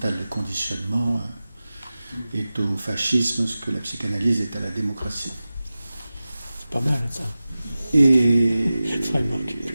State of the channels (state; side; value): inverted; both; correlation -0.95